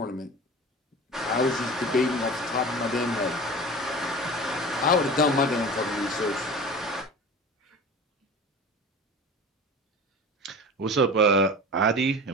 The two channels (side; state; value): both; normal; correlation 0.35